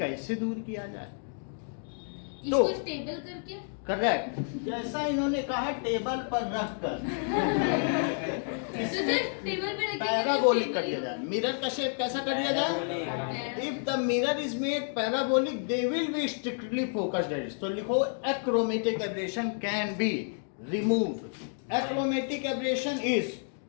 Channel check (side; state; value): right; silent; 58 dB below the other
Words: दूर किया जाए। इसको स्टेबल करके करेक्ट, जैसा इन्होंने कहा टेबल पर रख कर तो सर टेबल पे रख के पैराबोलिक कर दिया जाए। मिरर का शेप कैसा कर दिया जाए? If the mirror is made parabolic they will be strictly focused edge. तो लिखो achromatic aberration can be removed. Achromatic aberration is